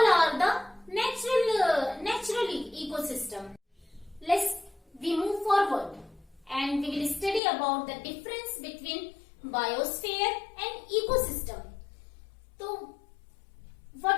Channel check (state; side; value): drops out; right; at 7.4 s